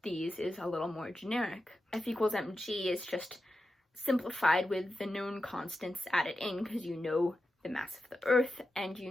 these is a little more generic. F equals mg is just simplified with the known constants added in, because you know the mass of the Earth and you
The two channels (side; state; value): both; normal; correlation 0.91